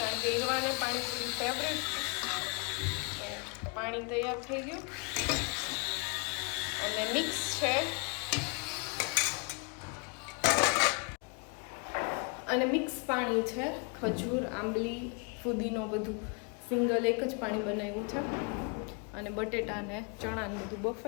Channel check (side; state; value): right; quieter; 32.4 dB